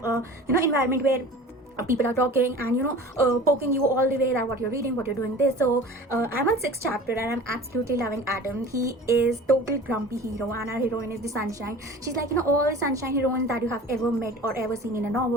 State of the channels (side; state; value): both; normal; correlation 0.40